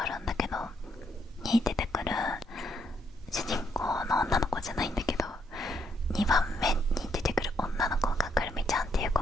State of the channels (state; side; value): normal; both; correlation 0.74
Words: あるんだけど、に出てくる主人公の女の子じゃないんだけど、2番目に出てくる女の子がくるみちゃんっていう子